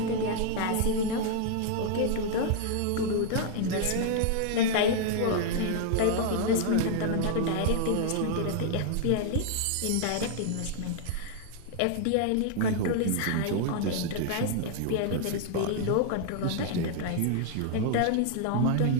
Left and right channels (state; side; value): different; both; correlation 0.00